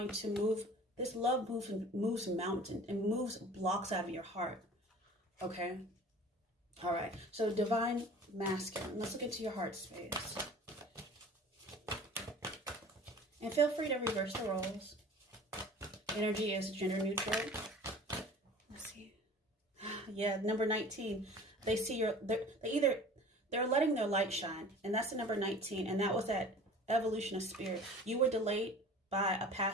to move. This love moves mountains and moves blocks out of your heart. Okay. All right. So divine masculine. Let's look into your heart space. And feel free to reverse the roles. Energy is gender neutral. Let's see. Yeah, number 19. They see they're letting their light shine, and that's the number 19, and that was that evolution of spirit. You were delayed by a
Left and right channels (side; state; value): both; normal; correlation 0.43